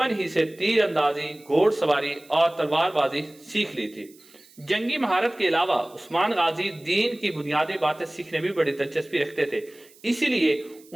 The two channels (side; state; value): right; noise; hiss, 26 dB below the sound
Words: ہی سے تیر اندازی، گھوڑ سواری اور تلوار بازی سیکھ لی تھی۔ جنگی مہارت کے علاوہ عثمان غازی دین کی بنیادی باتیں سیکھنے بھی بڑی دلچسپی رکھتے تھے، اسی لیے